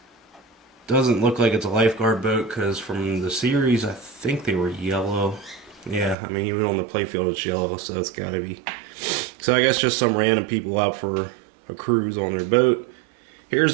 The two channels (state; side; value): drops out; left; at 6.2 s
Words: Doesn't look like it's a lifeguard boat because from the series I think they were yellow. Yeah, I mean even on the playfield it's yellow, so it's gotta be. So I guess just some random people out for a cruise on their boat.